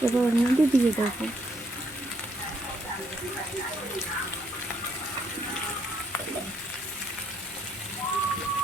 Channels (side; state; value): both; normal; correlation 0.71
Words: এবার ওর মধ্যে দিয়ে দেবো।